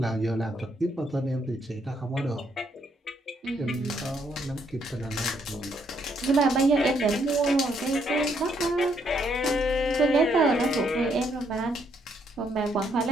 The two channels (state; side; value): normal; both; correlation 0.73